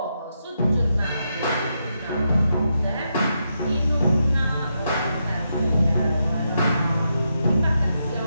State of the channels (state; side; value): inverted; both; correlation -0.83